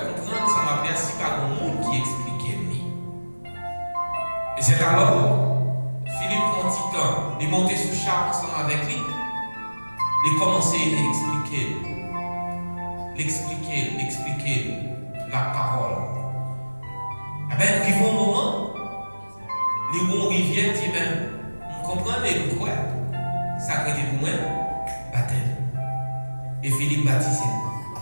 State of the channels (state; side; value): inverted; both; correlation -1.00